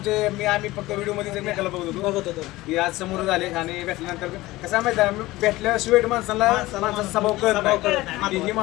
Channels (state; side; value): quieter; right; 18.6 dB